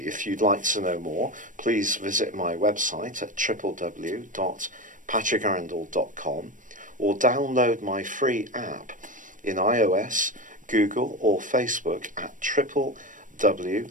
If you'd like to know more, please visit my website at www.patrickarundel.com or download my free app in iOS, Google or Facebook at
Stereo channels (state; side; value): late; left; 0.38 ms